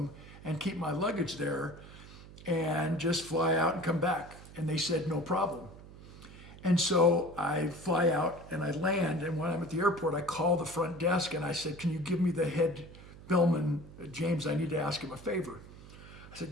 and keep my luggage there and just fly out and come back. And they said, no problem. And so I fly out and I land, and when I'm at the airport, I call the front desk and I said, can you give me the head bellman, James, I need to ask him a favor. I said,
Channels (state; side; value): noise; right; hum, 17 dB below the sound